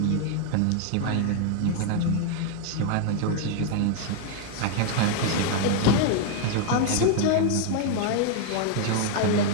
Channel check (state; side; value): different; both; correlation 0.00